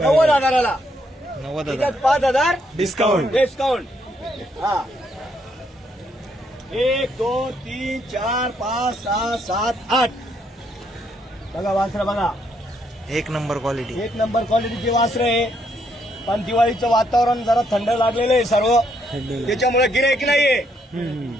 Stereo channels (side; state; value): both; normal; correlation 0.73